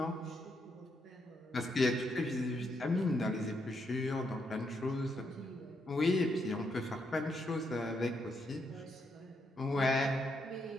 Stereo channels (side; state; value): both; normal; correlation 0.78